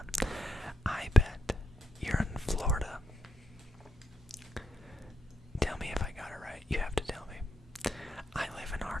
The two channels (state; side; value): normal; both; correlation 0.83